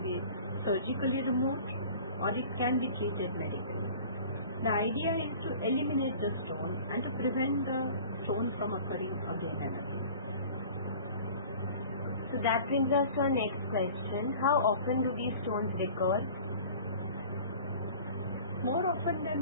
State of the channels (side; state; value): both; inverted; correlation -0.44